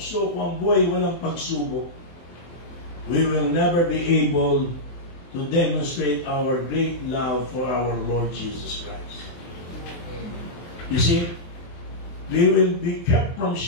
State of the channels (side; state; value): right; late; 23 ms